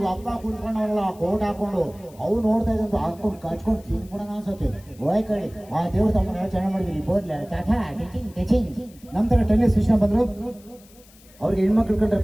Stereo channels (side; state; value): left; noise; hiss, 26 dB below the sound